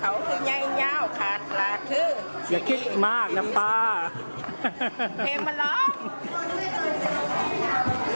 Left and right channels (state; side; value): inverted; both; correlation -1.00